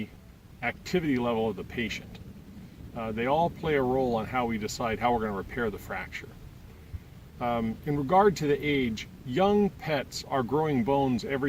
activity level of the patient. They all play a role on how we decide how we're going to repair the fracture. In regard to the age, young pets are growing bones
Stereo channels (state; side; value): identical; both; correlation 1.00